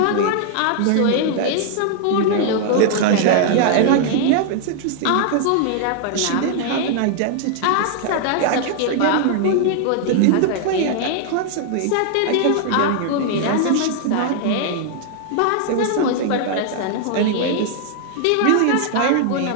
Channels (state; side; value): different; both; correlation 0.00